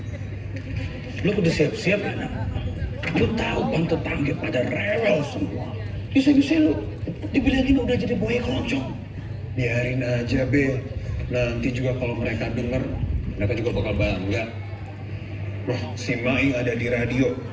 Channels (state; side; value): identical; both; correlation 1.00